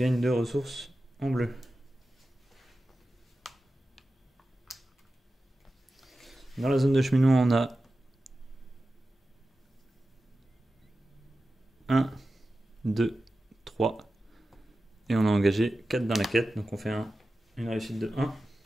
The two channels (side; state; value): both; normal; correlation 0.93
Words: 2 ressources en bleu. Dans la zone de cheminement, on a 1, 2, 3, et on a engagé 4 dans la quête, donc on fait une réussite de 1.